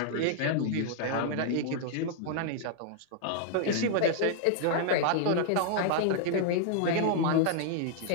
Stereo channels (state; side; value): different; both; correlation -0.01